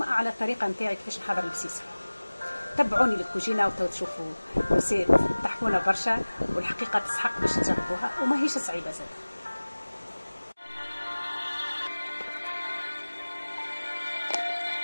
على الطريقة نتاعي كيفاش نحضر البسيسة. تبعوني للكوجينة وتو تشوفوا رسيت تحكونا برشا، والحقيقة تسحق باش تجربوها وما هيش صعيبة زاد.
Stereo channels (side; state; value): both; inverted; correlation -1.00